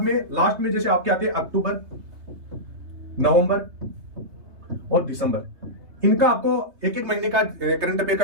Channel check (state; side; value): late; left; 3.3 ms